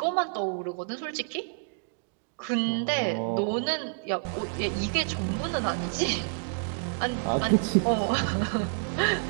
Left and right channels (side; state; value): left; silent; digital silence